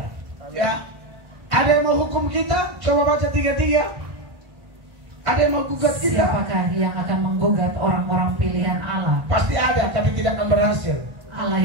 Ya. Ada yang mau hukum kita? Coba baca 33. Ada yang mau gugat kita? Siapakah yang akan menggugat orang-orang pilihan Allah? Pasti ada, tapi tidak akan berhasil. Allah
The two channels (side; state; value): left; late; 1.5 ms